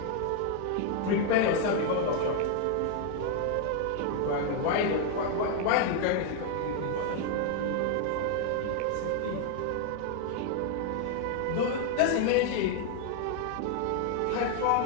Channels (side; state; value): both; different; correlation 0.00